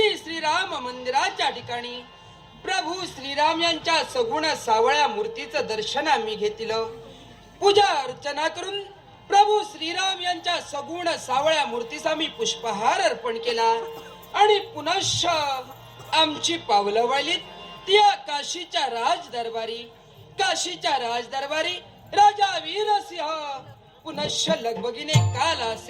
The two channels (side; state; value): both; identical; correlation 1.00